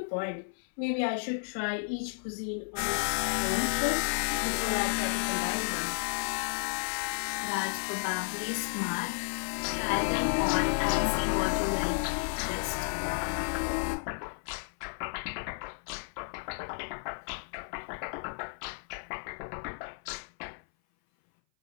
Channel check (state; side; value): silent; right; 56 dB below the other